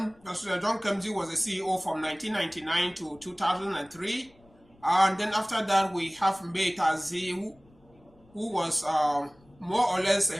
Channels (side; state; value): left; noise; rumble, 30 dB below the sound